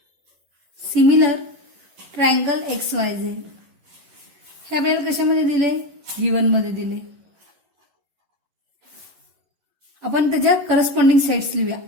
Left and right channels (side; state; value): left; late; 11 ms